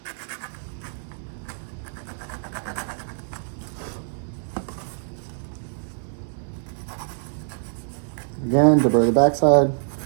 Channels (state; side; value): silent; left; digital silence